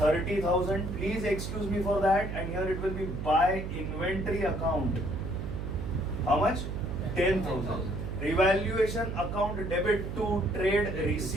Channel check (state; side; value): noise; right; hum, 5 dB below the sound